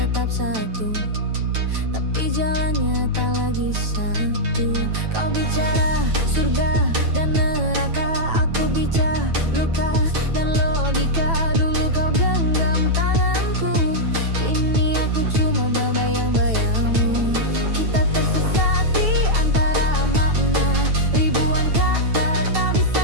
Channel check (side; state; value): left; late; 9.1 ms